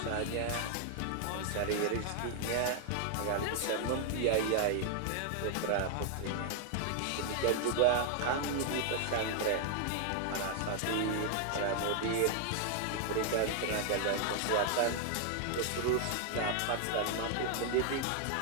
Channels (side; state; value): both; different; correlation 0.00